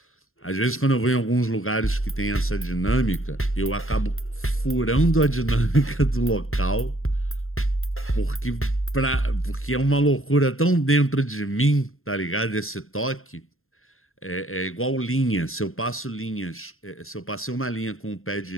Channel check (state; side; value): late; right; 0.61 ms